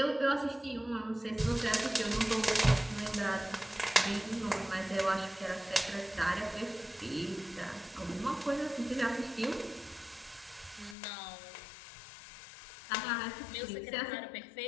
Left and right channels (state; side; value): drops out; right; at 11.0 s